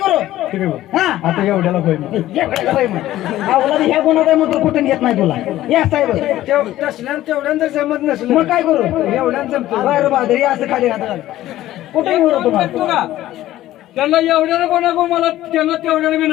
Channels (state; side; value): quieter; right; 14.5 dB